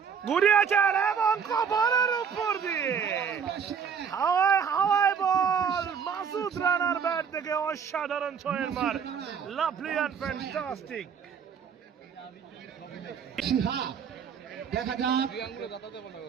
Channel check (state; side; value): quieter; left; 6.9 dB